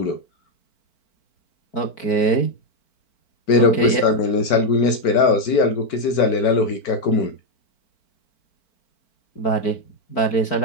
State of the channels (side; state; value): right; late; 4.5 ms